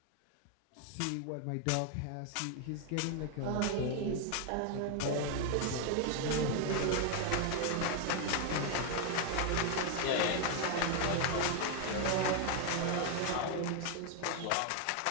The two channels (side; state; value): both; different; correlation 0.01